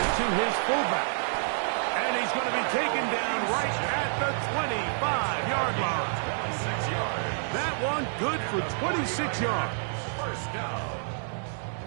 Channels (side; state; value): left; silent; digital silence